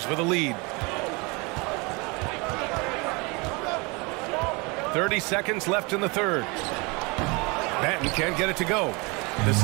with a lead. 30 seconds left in the third. Banton can't get it to go. The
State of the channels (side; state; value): left; quieter; 28.1 dB